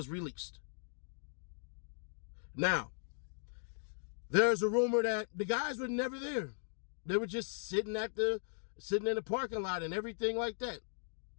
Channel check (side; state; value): right; silent; digital silence